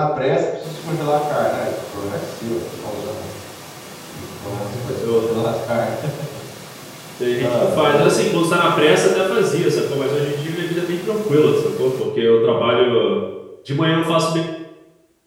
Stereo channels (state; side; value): identical; both; correlation 1.00